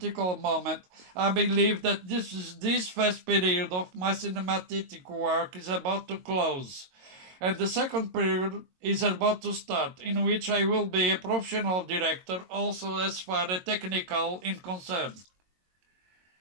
moment, I believe that this first period of my cinematic work is about to close, and the second period is about to start, in which I will be a professional director, also as far as technical in concern.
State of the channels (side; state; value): left; late; 22 ms